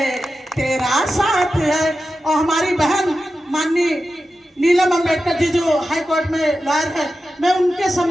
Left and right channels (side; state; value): both; normal; correlation 0.92